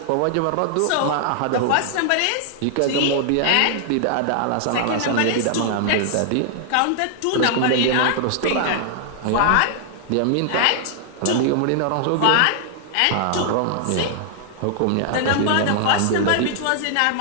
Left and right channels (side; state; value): both; different; correlation 0.00